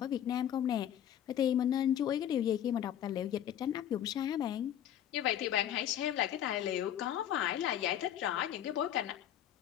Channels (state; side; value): quieter; right; 10.6 dB